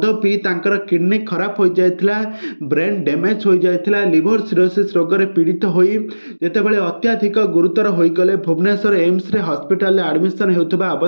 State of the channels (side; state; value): both; inverted; correlation -1.00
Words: ପିଇ ତାଙ୍କର କିଡ଼ନୀ ଖରାପ ହୋଇଯାଇଥିଲା, ବ୍ରେନ୍ ଡ୍ୟାମେଜ୍ ହୋଇଯାଇଥିଲା। ଲିଭର ସିରୋସିସ୍ ରୋଗରେ ପୀଡ଼ିତ ହୋଇ ଯେତେବେଳେ ଅତ୍ୟଧିକ ଗୁରୁତର ହୋଇଗଲେ, ଭୁବନେଶ୍ୱର ଏମ୍ସରେ ହସ୍ପିଟାଲରେ ଆଡ଼ମିସନ୍ ହେଉଥିବା